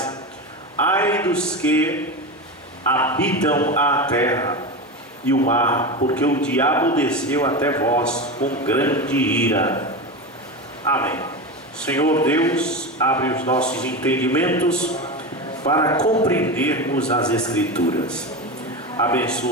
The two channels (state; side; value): normal; both; correlation 0.21